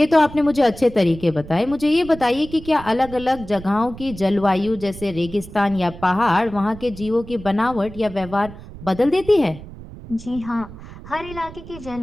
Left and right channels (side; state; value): right; noise; rumble, 15 dB below the sound